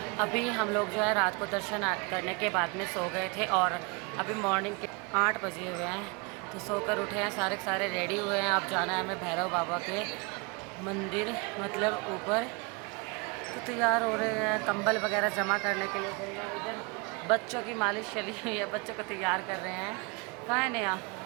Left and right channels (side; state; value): left; quieter; 30.5 dB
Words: अभी हम लोग जो है रात को दर्शन करने के बाद में सो गए थे और अभी मॉर्निंग के 8 बजे हुए हैं, तो सोकर उठे हैं, सारे के सारे रेडी हुए हैं। अब जाना है हमें भैरव बाबा के मंदिर, मतलब ऊपर, तो तैयार हो रहे हैं। कंबल वगैरह जमा करने के लिए गए हैं। इधर बच्चों की मालिश चली हुई है, बच्चों को तैयार कर रहे हैं। कहाँ है नया?